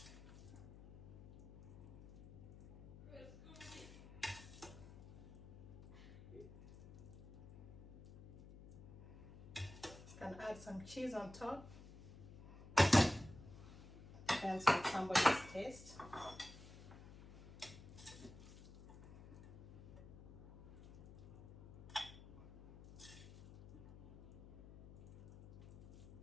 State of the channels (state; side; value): noise; left; hum, 16 dB below the sound